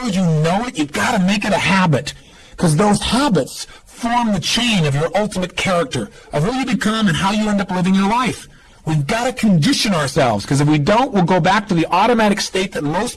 as you know it, you've got to make it a habit. Because those habits form the chain of your ultimate character, of who you become and how you end up living your life. We've got to condition ourselves, because if we don't, we'll go back to the automatic state that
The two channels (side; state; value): both; identical; correlation 1.00